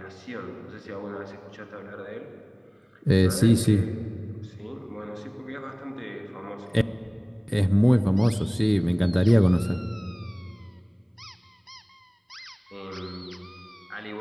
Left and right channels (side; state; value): both; identical; correlation 1.00